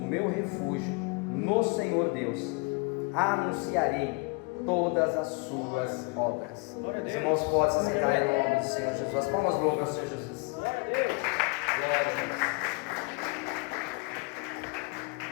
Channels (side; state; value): right; quieter; 30.5 dB